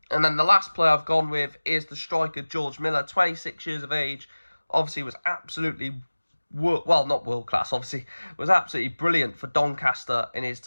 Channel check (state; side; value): inverted; both; correlation -1.00